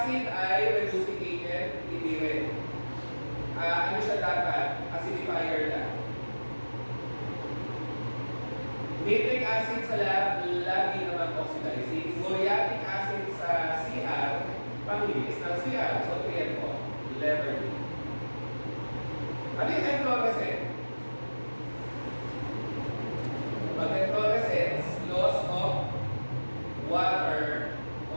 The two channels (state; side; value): inverted; both; correlation -1.00